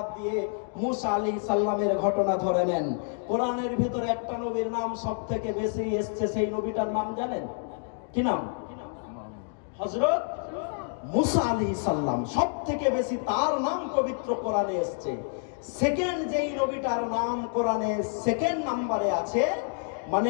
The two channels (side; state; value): right; silent; 59 dB below the other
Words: দিয়ে মুসা আলাইহিস সালামের ঘটনা ধরে নেন। কোরআনের ভিতরে একটা নবীর নাম সব থেকে বেশি এসছে, সেই নবীটার নাম জানেন? কি নাম? হযরত মুসা আলাইহিস সালাম। সব থেকে বেশি তার নাম পবিত্র কোরআনে এসছে। সেকেন্ড যেই নবীটার নাম কোরআনে সেকেন্ড নম্বরে আছে,